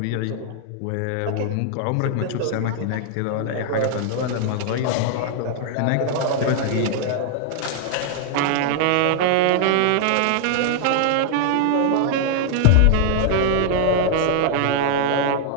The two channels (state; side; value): different; both; correlation -0.01